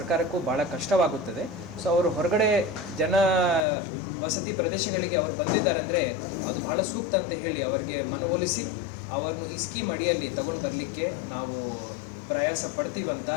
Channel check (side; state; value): right; drops out; at 3.7 s